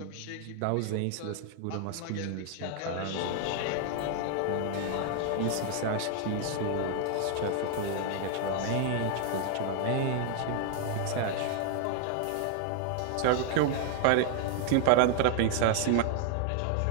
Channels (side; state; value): both; different; correlation 0.00